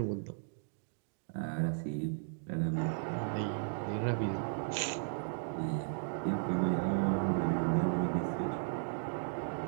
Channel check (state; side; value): silent; left; digital silence